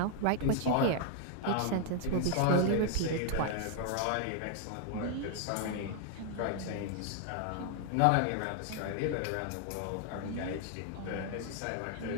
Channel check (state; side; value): different; both; correlation 0.00